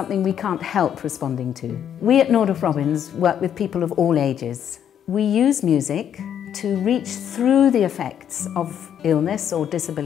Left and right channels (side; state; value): right; quieter; 9.2 dB